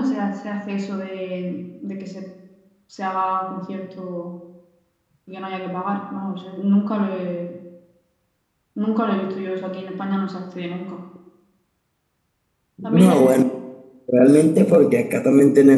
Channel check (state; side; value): identical; both; correlation 1.00